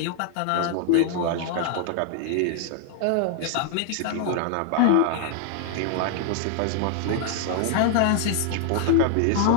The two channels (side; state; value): both; different; correlation -0.01